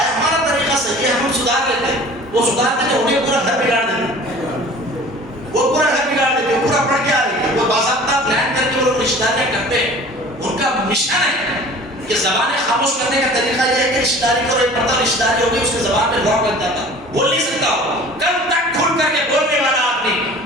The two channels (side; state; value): both; normal; correlation 0.45